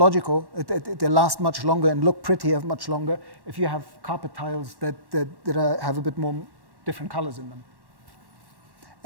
They last much longer and look prettier much longer if you have carpet tiles that have a bit more different colors in them.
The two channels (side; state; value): left; late; 1.1 ms